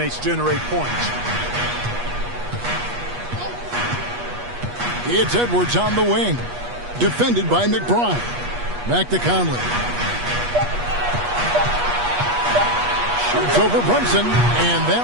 generate points. It's Edwards on the wing. Defended by McBride. Back to Conley. Shoots over Brunson, and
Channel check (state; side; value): late; left; 8.3 ms